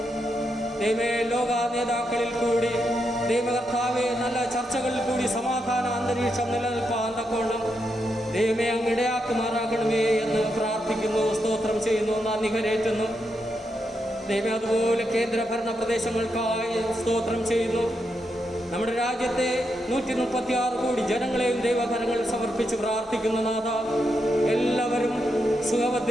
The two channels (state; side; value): normal; both; correlation 0.83